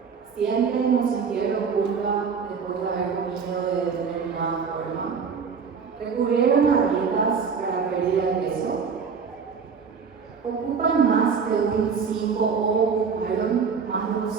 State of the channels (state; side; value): quieter; left; 5.9 dB